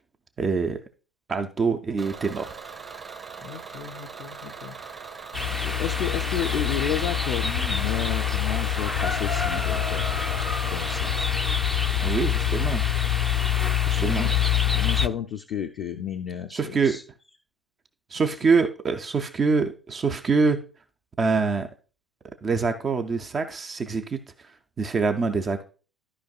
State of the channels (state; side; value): normal; both; correlation 0.54